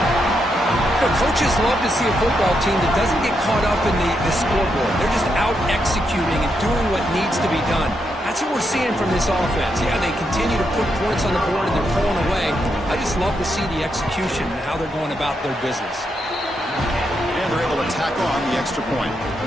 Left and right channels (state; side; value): normal; both; correlation 0.81